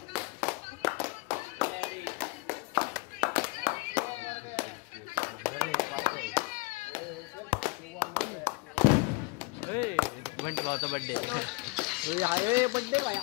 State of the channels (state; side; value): quieter; right; 26.4 dB